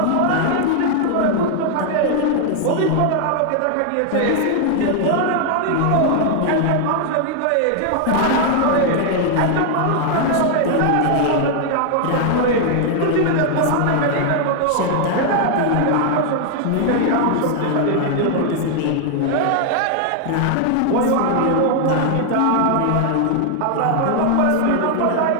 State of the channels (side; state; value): both; different; correlation 0.00